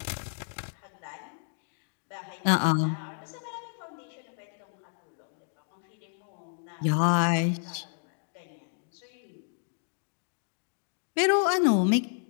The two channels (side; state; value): right; silent; digital silence